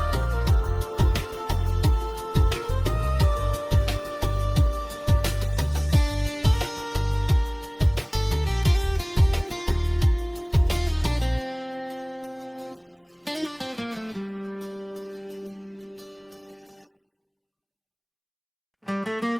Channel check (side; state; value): both; identical; correlation 1.00